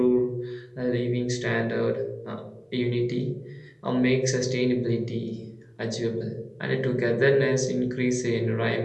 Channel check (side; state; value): both; identical; correlation 1.00